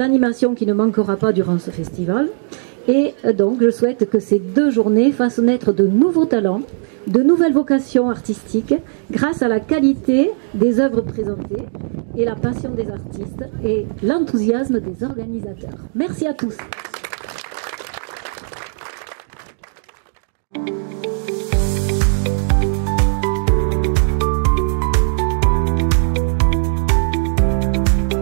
qui ne manquera pas durant ce festival. Et donc je souhaite que ces 2 journées fassent naître de nouveaux talents, de nouvelles vocations artistiques grâce à la qualité des œuvres présentées et la passion des artistes et l'enthousiasme des organisateurs. Merci à tous.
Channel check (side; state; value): left; silent; digital silence